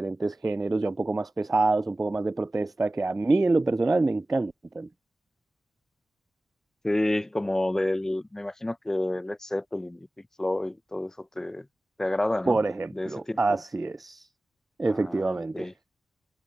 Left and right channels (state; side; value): normal; both; correlation 0.96